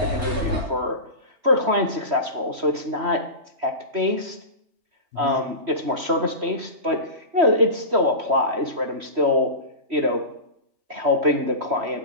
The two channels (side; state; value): left; late; 3.1 ms